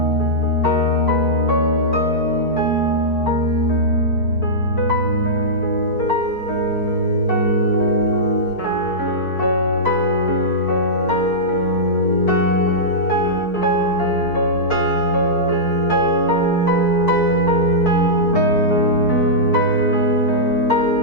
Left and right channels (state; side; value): late; right; 4.6 ms